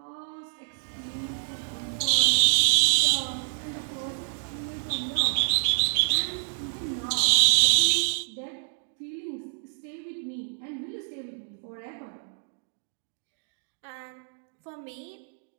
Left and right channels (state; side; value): silent; left; digital silence